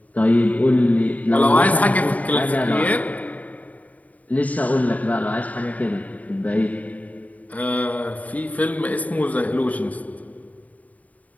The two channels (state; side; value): late; right; 0.072 ms